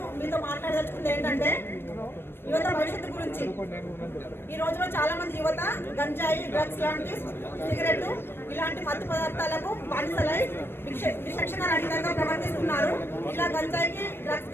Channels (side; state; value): right; late; 0.11 ms